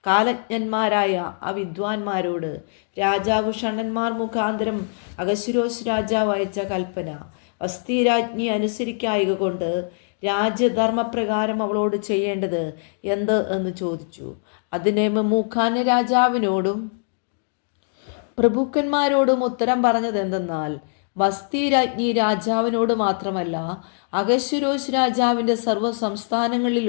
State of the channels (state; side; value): silent; right; digital silence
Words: കാലജ്ഞന്മാരായ ആ വിദ്വാൻമാരോട് രാജാവ് ഷണ്ഡന്മാർ മുഖാന്തരം അഹശ്വേരോശ് രാജാവ് അയച്ച കൽപ്പന വസ്തി രാജ്ഞി അനുസരിക്കായക കൊണ്ട് രാജ്യധർമ്മപ്രകാരം അവളോട് ചെയ്യേണ്ടത് എന്ത് എന്ന് ചോദിച്ചു. അതിനെ മെമൂഖാൻ രാജാവിനോടും പ്രഭുക്കന്മാരോടും ഉത്തരം പറഞ്ഞത് എന്തെന്നാൽ, വസ്തി രാജ്ഞി രാജാവിനോട് മാത്രമല്ല അഹശ്വേരോശ് രാജാവിൻ്റെ സർവ്വ